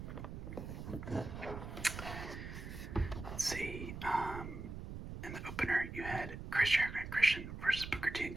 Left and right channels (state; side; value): noise; right; rumble, 8 dB below the sound